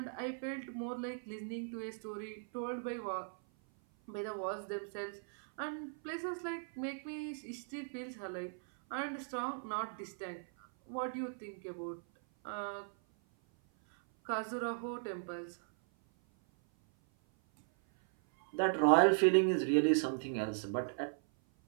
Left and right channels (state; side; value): silent; left; 53 dB below the other